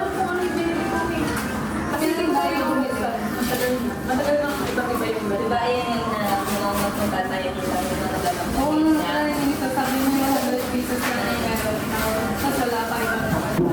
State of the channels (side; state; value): both; identical; correlation 1.00